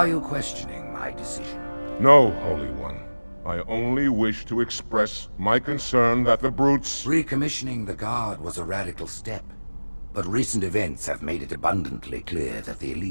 you questioning my decision? No, Holy One. I only wish to express my concern that the brutes... Recommissioning the Guard was a radical step. But recent events have made it abundantly clear that the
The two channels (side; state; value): both; inverted; correlation -1.00